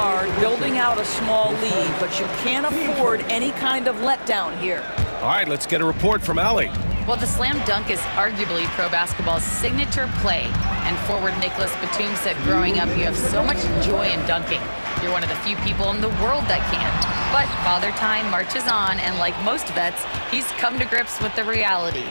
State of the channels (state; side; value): inverted; both; correlation -1.00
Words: building out a small lead, but you can't afford any kind of letdown here. All right, let's get a report from Allie. Well, the slam dunk is arguably pro basketball's signature play. And forward Nicholas Batum said growing up, you have so much joy in dunking. You're one of the few people in the world that can. But Father Time marches on, and like most vets, he's come to grips with the reality.